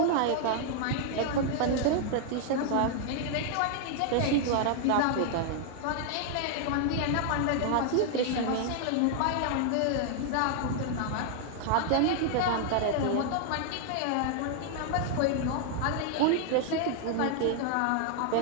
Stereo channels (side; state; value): both; different; correlation 0.00